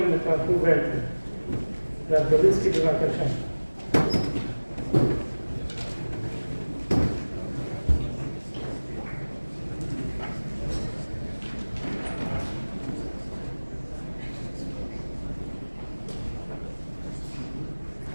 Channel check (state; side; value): inverted; both; correlation -1.00